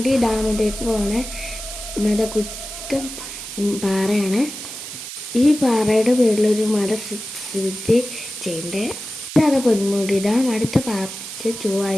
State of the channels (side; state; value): right; noise; hiss, 10 dB below the sound